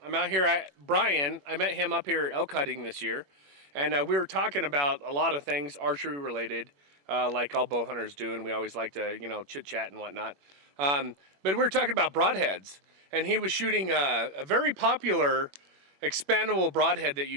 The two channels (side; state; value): left; late; 21 ms